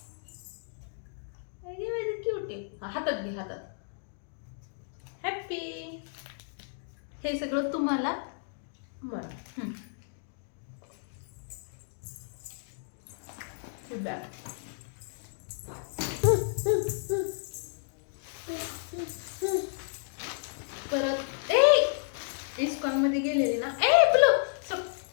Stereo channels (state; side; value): silent; right; digital silence